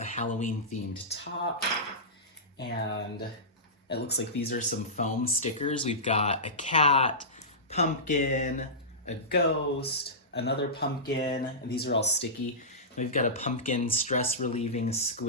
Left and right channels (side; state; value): both; normal; correlation -0.17